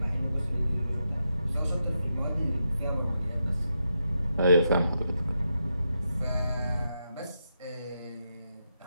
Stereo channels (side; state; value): both; inverted; correlation -0.85